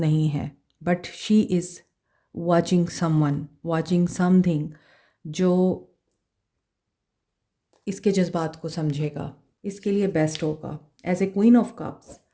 है। But she is watching someone, watching something जो इसके जज्बात को समझेगा, इसके लिए बेस्ट होगा। As a queen of cups,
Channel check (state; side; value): identical; both; correlation 1.00